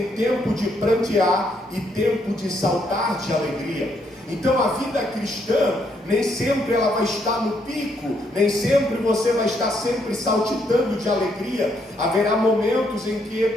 tempo de prantear e tempo de saltar de alegria. Então a vida cristã, nem sempre ela vai estar no pico, nem sempre você vai estar sempre saltitando de alegria. Haverá momentos em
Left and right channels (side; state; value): both; normal; correlation 0.74